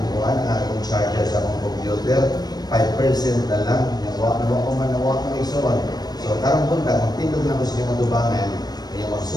buwan, ang akong charger sa akong computer, 5% na lang, nawa ko ison. So, karong punta, kung tindog na ko sinutubangan, kaya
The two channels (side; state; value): right; late; 0.19 ms